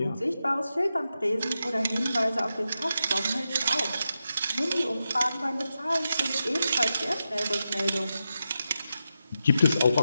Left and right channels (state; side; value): inverted; both; correlation -0.88